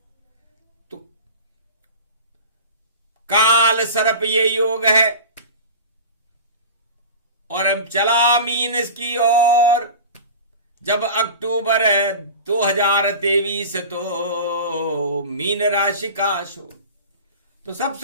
तो काल सर्प ये योग है। और अब चला मीन की ओर। जब अक्टूबर 2023 तो मीन राशि का शो, तो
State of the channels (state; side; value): inverted; both; correlation -0.33